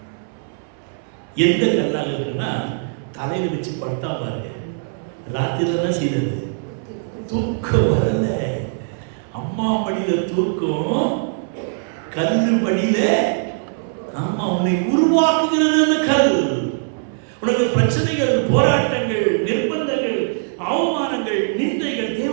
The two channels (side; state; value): left; silent; 65 dB below the other